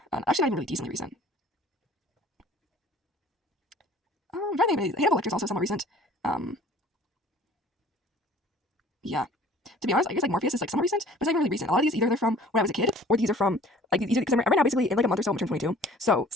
not even really decently recent. I'm trying to think. Hannibal Lecter is also somewhat recent. Yeah. To be honest, I guess like Morpheus is like somewhat recent, but it's not even really recent. A lot of these either they're from when I was a kid, or these are from like these because I'm right now basically in like a month or so I'm turning 22. So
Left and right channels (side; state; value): both; normal; correlation 0.50